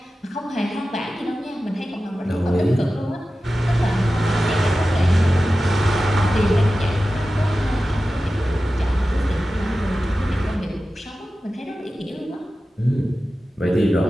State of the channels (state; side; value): normal; both; correlation 0.94